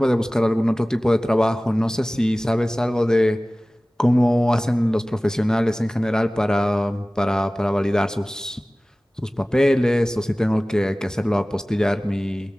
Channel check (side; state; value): both; normal; correlation 0.98